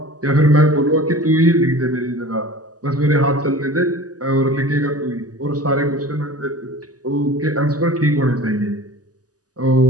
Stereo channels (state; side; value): late; left; 0.67 ms